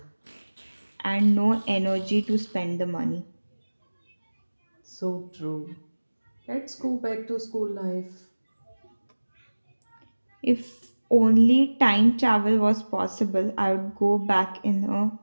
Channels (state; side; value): inverted; both; correlation -1.00